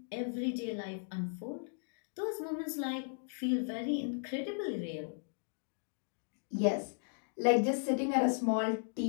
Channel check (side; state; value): right; silent; digital silence